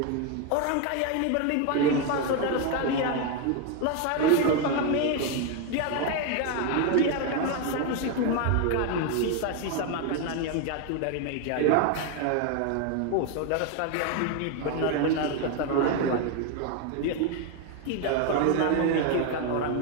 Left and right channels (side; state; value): both; different; correlation 0.01